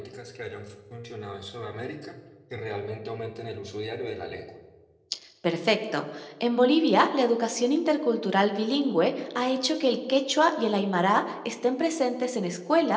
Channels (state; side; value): identical; both; correlation 1.00